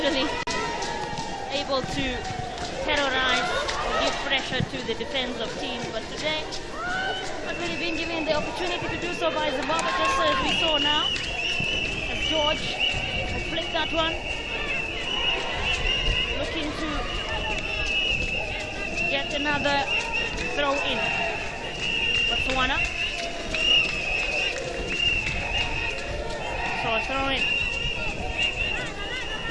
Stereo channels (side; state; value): both; identical; correlation 1.00